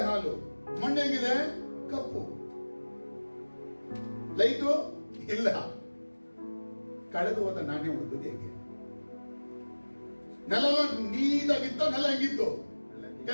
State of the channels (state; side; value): inverted; both; correlation -1.00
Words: ಹಾಲು. ಮಣ್ಣು ಹೆಂಗಿದೆ? ಕಪ್ಪು. ಲೈಟು ಇಲ್ಲ. ಕಳೆದು ಹೋದ ನಾಣ್ಯ ಹುಡುಕದು ಹೇಗೆ? ನೆಲ ನೀಟಾಗಿತ್ತ, ನೆಲ ಹೆಂಗಿತ್ತು?